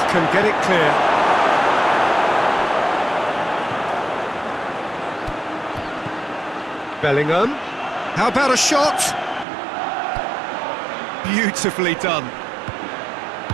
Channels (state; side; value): drops out; left; at 9.5 s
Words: can get it clear. Bellingham. How about a shot? Beautifully done.